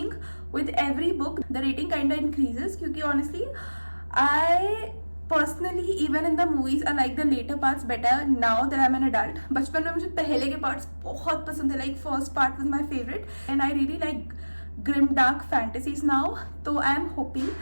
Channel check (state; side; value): inverted; both; correlation -1.00